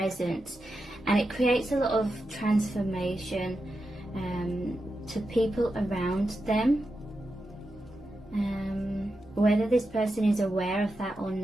and it creates a lot of transformation to people around them. Whether this person is aware of that or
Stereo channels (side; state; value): both; normal; correlation 0.89